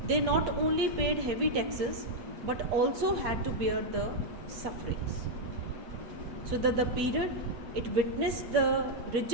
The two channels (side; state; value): left; late; 8.4 ms